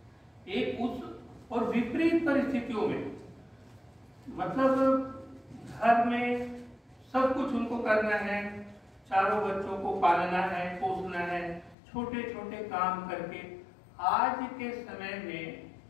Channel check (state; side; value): drops out; right; at 11.8 s